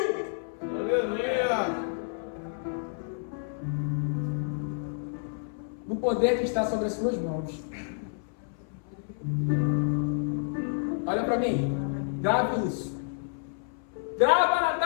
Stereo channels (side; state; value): right; silent; 58 dB below the other